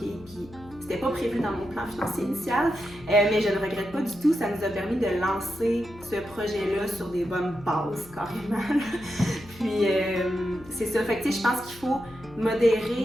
Puis c'était pas prévu dans mon plan financier initial, mais je ne regrette pas du tout. Ça nous a permis de lancer ce projet-là sur des bonnes bases, carrément. Puis c'est ça. Fait que je pense qu'il faut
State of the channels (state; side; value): noise; left; hum, 20 dB below the sound